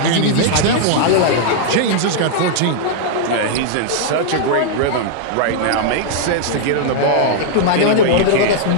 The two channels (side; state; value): both; different; correlation -0.01